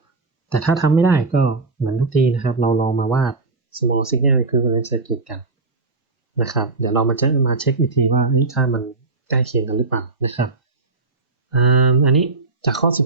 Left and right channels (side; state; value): left; quieter; 3.7 dB